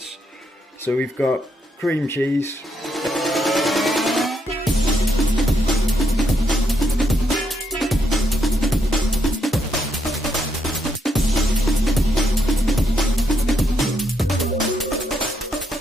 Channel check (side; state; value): both; normal; correlation 0.77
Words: So we've got cream cheese,